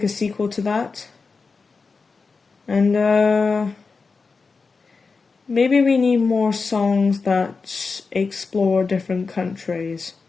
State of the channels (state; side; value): quieter; right; 4.5 dB